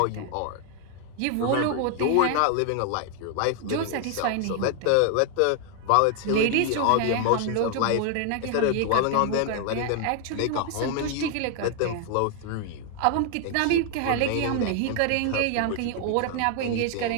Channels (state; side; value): different; both; correlation 0.00